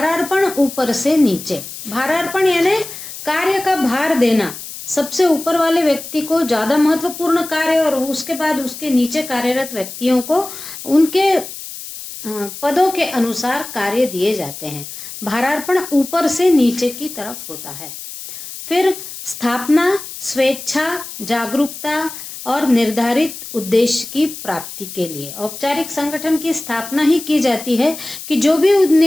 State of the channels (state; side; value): noise; left; hiss, 11 dB below the sound